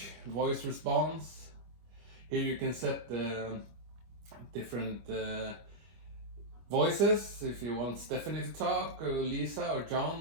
voice response. Here you can set the different voices, if you want Stephanie to talk, or Lisa, or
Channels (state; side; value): late; left; 25 ms